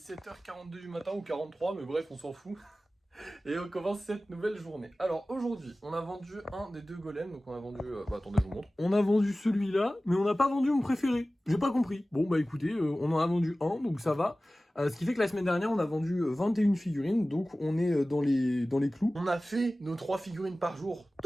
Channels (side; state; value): both; normal; correlation 0.96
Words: 7h42 du matin ou 43, mais bref, on s'en fout. Et on commence cette nouvelle journée. Alors aujourd'hui, on a vendu un des deux golems. Donc on a vendu... attendez, je vous montre. On a vendu celui-là, mais on n'a pas vendu mon préféré. J'ai pas compris. Bon bah écoutez, on en a vendu un, donc ça va. Ce qui fait que la semaine dernière, on a vendu 21 figurines. Donc on est dans les clous. On a fait nos 3 figurines par jour.